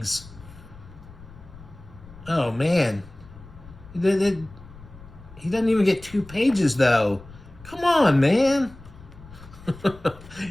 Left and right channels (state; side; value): noise; left; rumble, 19 dB below the sound